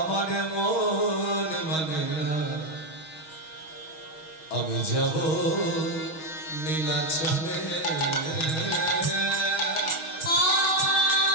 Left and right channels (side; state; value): right; late; 6.3 ms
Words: মন মানে না, আমি যাব নীলাচলে।